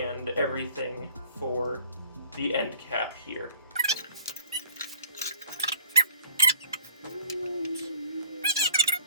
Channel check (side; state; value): both; inverted; correlation -0.49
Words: everything for the end cap here.